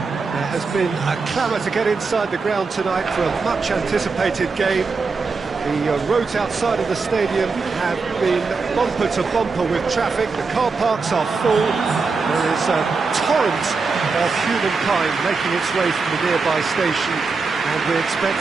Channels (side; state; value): left; quieter; 4.5 dB